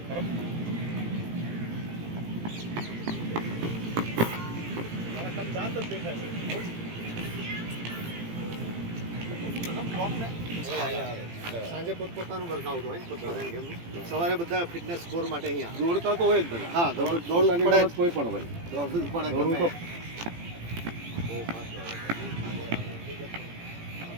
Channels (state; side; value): late; left; 18 ms